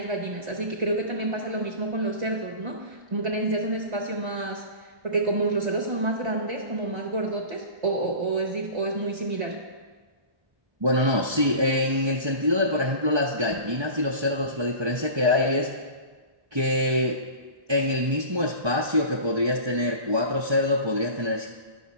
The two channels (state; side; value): late; left; 1.3 ms